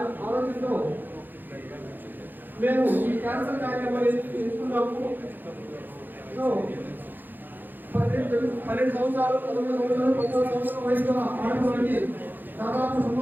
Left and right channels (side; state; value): left; late; 0.089 ms